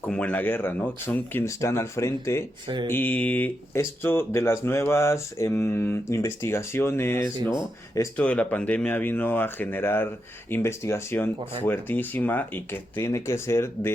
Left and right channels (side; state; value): both; normal; correlation 0.85